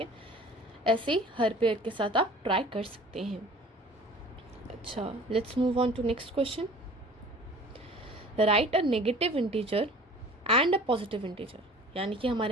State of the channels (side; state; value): both; normal; correlation 0.46